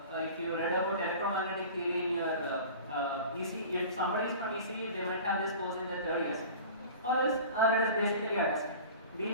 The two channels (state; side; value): inverted; both; correlation -0.39